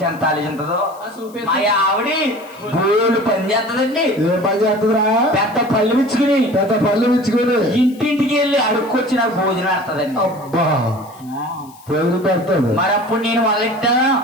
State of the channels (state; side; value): noise; left; hiss, 25 dB below the sound